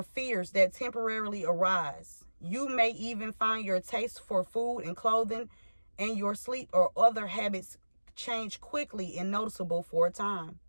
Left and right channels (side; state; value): both; inverted; correlation -1.00